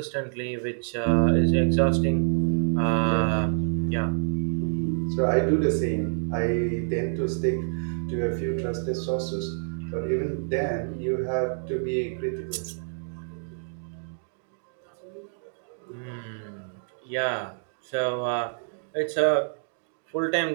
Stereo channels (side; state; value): left; silent; digital silence